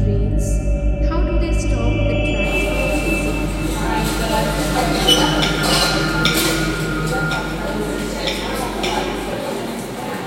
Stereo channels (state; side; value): identical; both; correlation 1.00